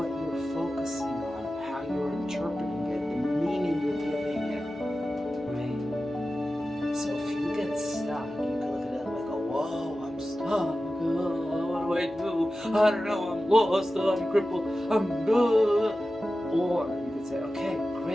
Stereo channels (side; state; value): both; normal; correlation 0.94